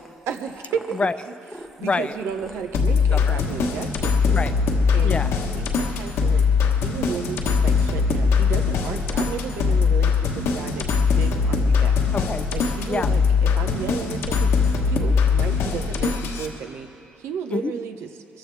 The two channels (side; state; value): right; quieter; 4.2 dB